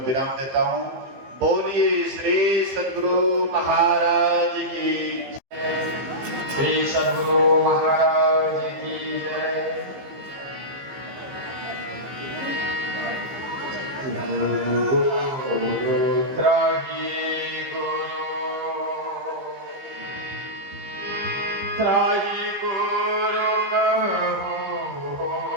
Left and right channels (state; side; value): late; left; 15 ms